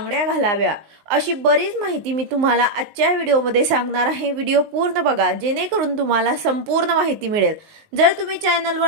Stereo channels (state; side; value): late; left; 19 ms